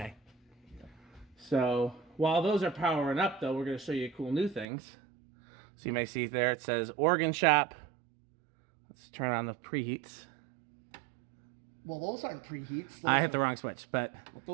So while those are powering up though, we're gonna show you cool new things. So you may see there, it says organ shop. Let's turn on the preheats. Well, those aren't preheats. I hit the wrong switch, but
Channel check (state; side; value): drops out; left; at 4.7 s